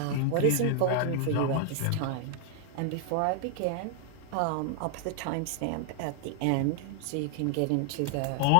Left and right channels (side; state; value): both; different; correlation 0.00